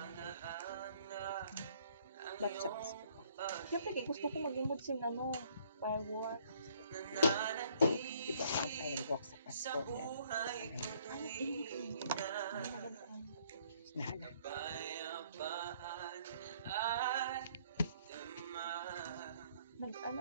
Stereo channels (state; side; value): inverted; both; correlation -0.63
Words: Ba't siya kasi? Siyempre, gusto ko mag-imod sin firework. Diba ang firework sa Pasko? Nahala. Nag-ano